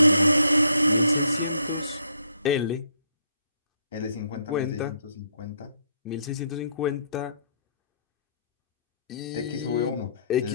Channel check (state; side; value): inverted; both; correlation -0.69